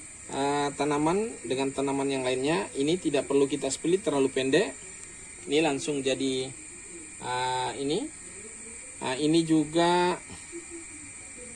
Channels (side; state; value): both; identical; correlation 1.00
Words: tanaman dengan tanaman yang lainnya. Ini tidak perlu kita split terlalu pendek. Ini langsung jadi ini. Ini juga